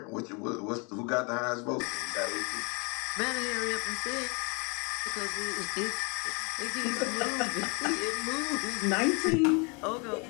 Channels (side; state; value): right; quieter; 32.4 dB